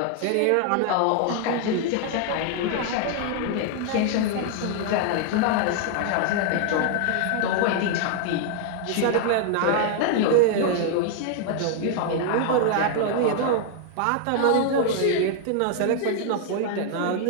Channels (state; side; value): different; both; correlation 0.00